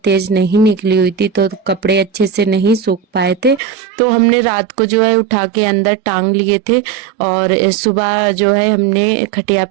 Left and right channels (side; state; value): left; drops out; at 3.6 s